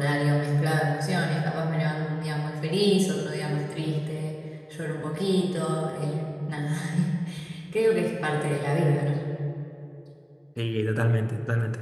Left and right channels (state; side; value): identical; both; correlation 1.00